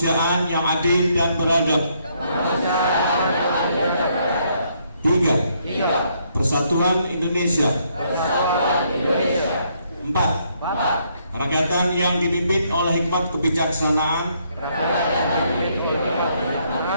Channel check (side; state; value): both; inverted; correlation -0.72